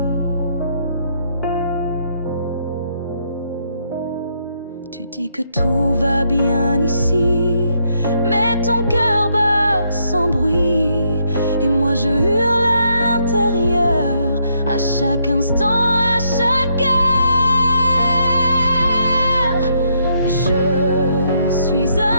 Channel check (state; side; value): inverted; both; correlation -0.74